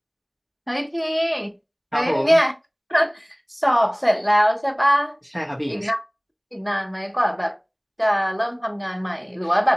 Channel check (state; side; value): identical; both; correlation 1.00